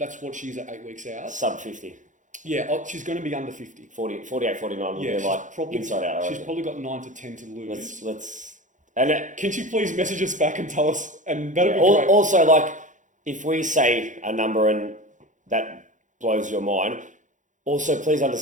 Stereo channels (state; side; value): late; left; 0.36 ms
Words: what she's at 8 weeks out. Sub 50. Yeah, she's going to be under 50. 48, 49 will be like probably, inside out. She's probably got 9 to 10 to lose. Can she please message us back and tell us? And that'll be great. Also, like, if we say a number and that blows your mind, also please